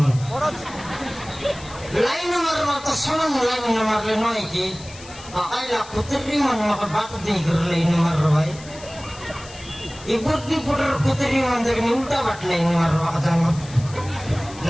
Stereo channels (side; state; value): left; noise; hiss, 18 dB below the sound